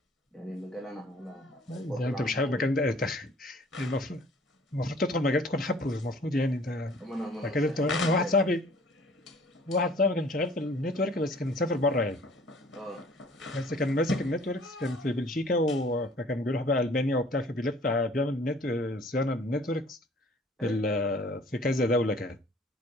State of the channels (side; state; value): both; normal; correlation 0.53